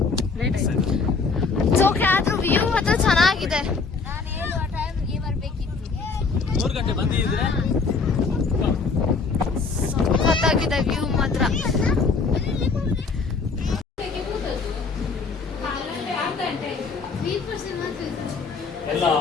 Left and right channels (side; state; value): right; quieter; 4.6 dB